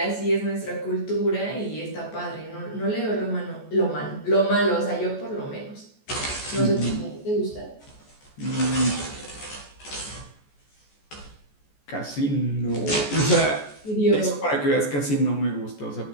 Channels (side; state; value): right; late; 14 ms